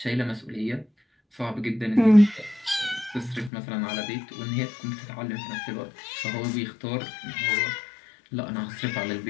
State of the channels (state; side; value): drops out; right; at 3.5 s